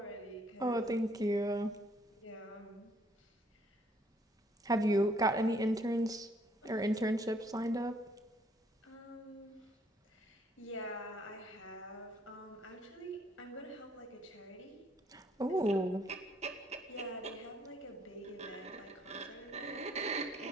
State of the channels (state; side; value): normal; both; correlation 0.65